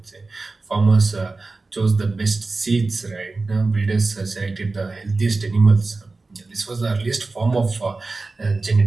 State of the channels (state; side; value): quieter; left; 3.6 dB